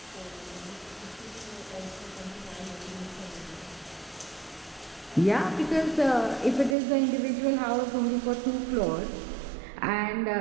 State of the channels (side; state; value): left; drops out; at 6.8 s